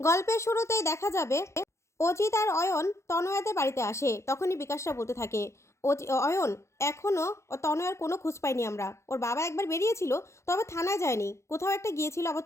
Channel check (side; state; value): right; late; 0.14 ms